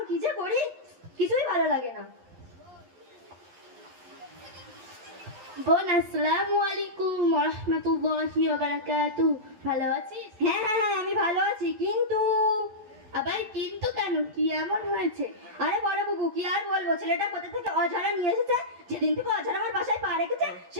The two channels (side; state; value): left; late; 11 ms